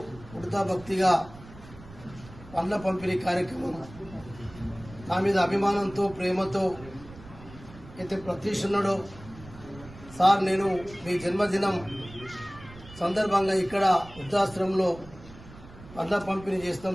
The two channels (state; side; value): noise; right; rumble, 18 dB below the sound